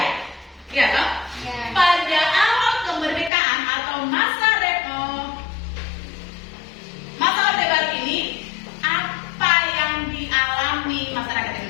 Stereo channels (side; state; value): right; drops out; at 3.3 s